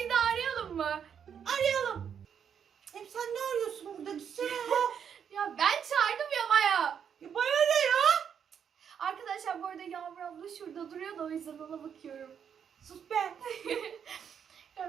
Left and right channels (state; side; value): quieter; left; 7.8 dB